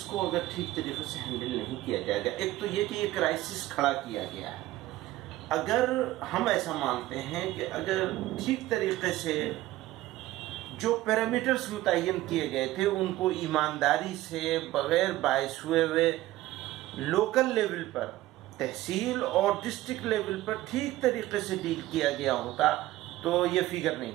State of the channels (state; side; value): quieter; left; 16.3 dB